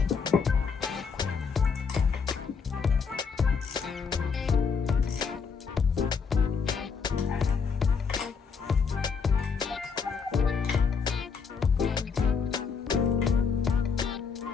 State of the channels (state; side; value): quieter; right; 5.7 dB